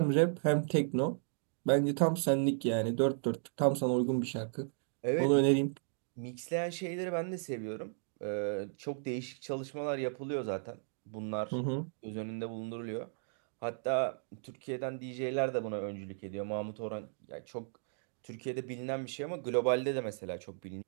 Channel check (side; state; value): left; silent; digital silence